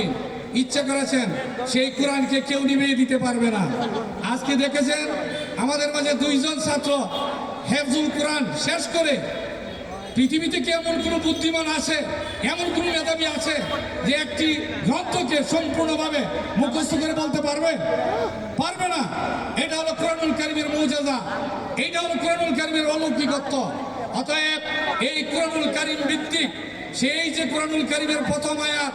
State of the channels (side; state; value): both; identical; correlation 1.00